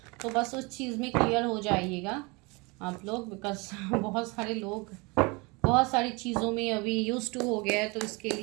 तो बस उस चीज़ में क्लियर हो जाइएगा आप लोग, बिकॉज बहुत सारे लोग बहुत सारी चीज़ों में अभी यूज टू हो गया है। तो इसके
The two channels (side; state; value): left; quieter; 27.5 dB